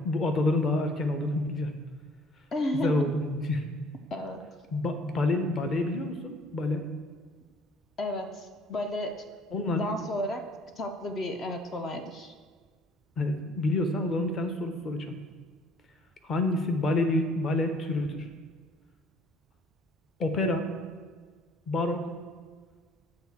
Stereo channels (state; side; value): normal; both; correlation 0.57